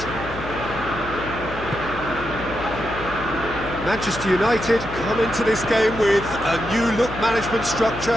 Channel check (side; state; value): left; noise; hum, 12 dB below the sound